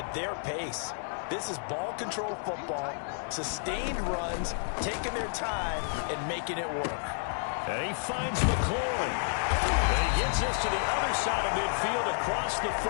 their pace. This is ball control football, sustained runs, taking their time and making it work. And he finds McLaurin. And he gets this to the other side of midfield across the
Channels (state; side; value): silent; right; digital silence